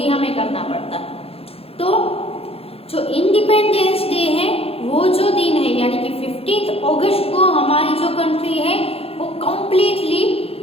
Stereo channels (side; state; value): right; late; 0.28 ms